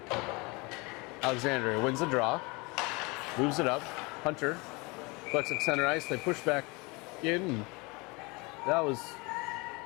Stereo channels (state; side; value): quieter; right; 26.8 dB